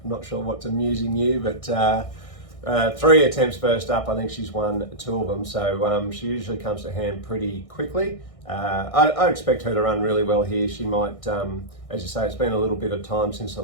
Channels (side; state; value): right; late; 1.6 ms